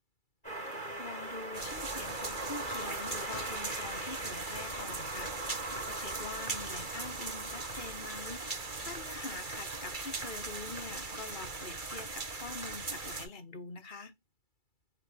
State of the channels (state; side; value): late; right; 2.3 ms